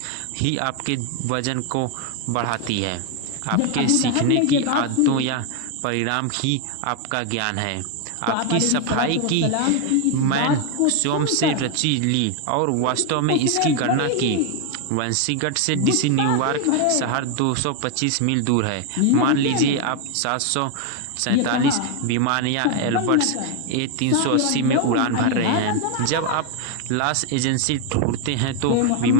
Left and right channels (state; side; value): different; both; correlation 0.01